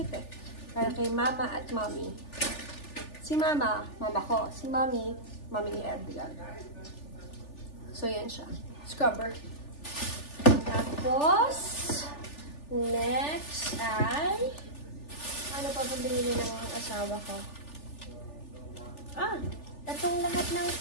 eh. Para kay mama at mommy. Si mama ko. Si mommy ni Edgar. So, yan siya. Scrubber. Tapos, next ay, ano pa ba binili ng asawa ko? Itong lahat ng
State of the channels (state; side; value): late; right; 3.4 ms